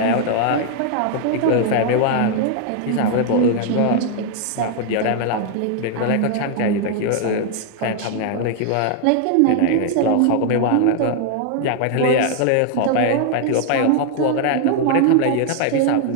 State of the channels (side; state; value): both; different; correlation 0.00